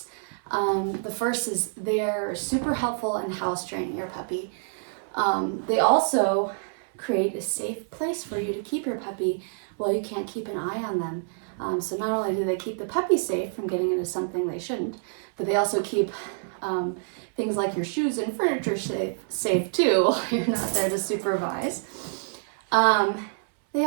The first is they're super helpful in house training your puppy. They also create a safe place for you to keep your puppy while you can't keep an eye on them. So not only do they keep the puppy safe from getting into something they shouldn't, but they also keep things like your shoes and furniture safe too while you're not there to supervise. They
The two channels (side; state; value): left; silent; 60 dB below the other